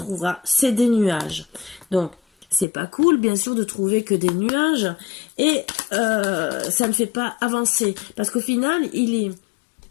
c'est des nuages. Donc c'est pas cool, bien sûr, de trouver que des nuages et ça ne fait pas avancer parce qu'au final,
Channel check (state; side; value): drops out; right; at 2.7 s